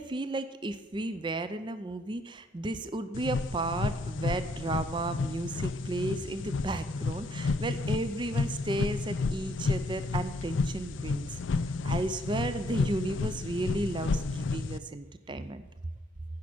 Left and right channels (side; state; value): both; normal; correlation 0.69